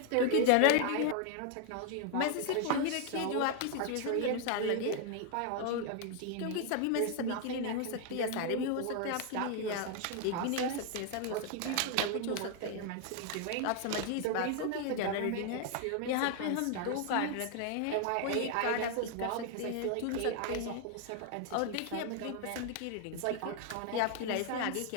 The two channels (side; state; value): both; different; correlation 0.00